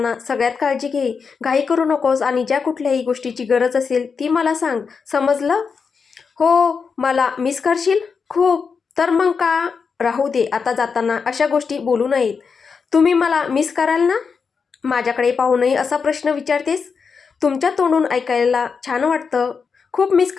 सगळ्यात काळजी घे. घाई करू नकोस आणि ज्या कुठल्याही गोष्टीची गरज असेल ती मला सांग, समजलं? हो. मला मिस करशील? खूप. तर मग का? राहू दे, आता जाताना अशा गोष्टी बोलू नयेत. तुम्ही मला मिस कराल ना? माझ्याकडे पाहूनही असा प्रश्न विचारतेस? तुमच्या तोंडून ऐकायला छान वाटतं. खूप मिस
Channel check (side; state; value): right; quieter; 5.6 dB